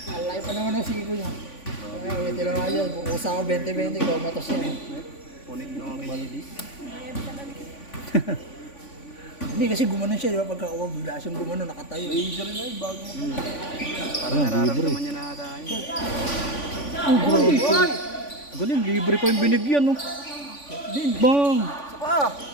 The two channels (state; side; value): late; right; 3.5 ms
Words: Alay pa naman ang siko niya. Kaya may tinamaan yan. Kukusa ko 20-20, ikaw matos yan. punik ng malidis. Hindi kasi gumanon siya, di ba? Pagkakuha, bigla siyang gumanon, nakatayo. Injury na bago mo. Ah, Parang libre. nararamdaman niya na tayo. Oh, grabe. Galing, libre pa yung binigyan, no? Din. Bang! Saka.